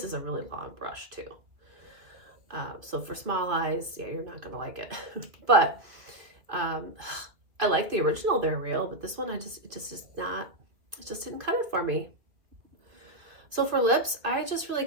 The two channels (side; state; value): left; late; 2.3 ms